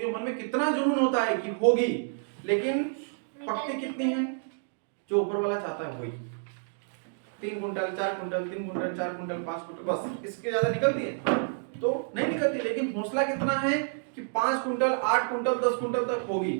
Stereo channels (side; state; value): left; silent; digital silence